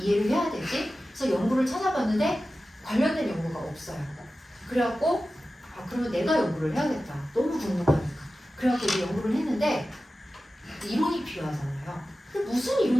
해야 되지? 그래서 연구를 찾아봤는데 관련된 연구가 없어요. 그래갖고 그러면 내가 연구를 해야겠다. 너무 궁금하니까. 그래갖고 이제 연구를 했는데 이론이 필요하잖아요. 근데 무슨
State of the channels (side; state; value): both; normal; correlation 0.94